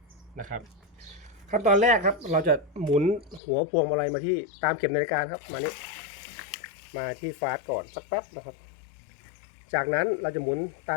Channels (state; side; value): drops out; right; at 3.4 s